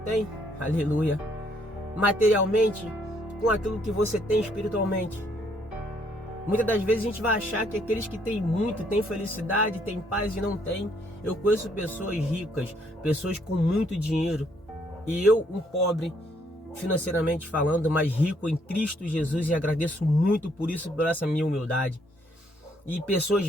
aleluia, materialmente, com aquilo que você tem espiritualmente? Muitas das vezes a gente vai achar que aqueles que têm muito, têm felicidade, têm paz e não têm. Eu conheço pessoas ricas, pessoas com muito dinheiro, e eu, um pobre, financeiramente falando, mas rico em Cristo Jesus, e agradeço muito por isso, por essa minha humildade. E pessoas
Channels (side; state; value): both; normal; correlation 0.69